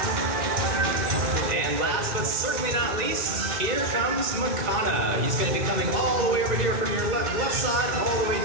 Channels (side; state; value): left; late; 2.0 ms